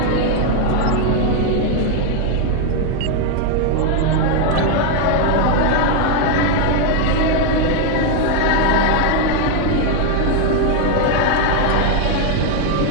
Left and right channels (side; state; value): both; different; correlation 0.01